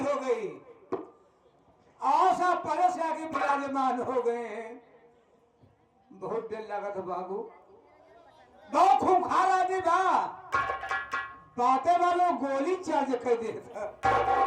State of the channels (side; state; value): both; identical; correlation 1.00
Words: गई, आशा परस आगे विराजमान हो गए हैं। बहुत देर लगा था बाबू, बहुत खूंखार आदमी बा, बातें वालों गोली चार्ज कर दे था।